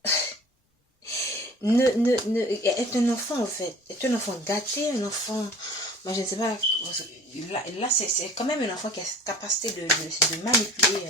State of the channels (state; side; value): normal; both; correlation 0.46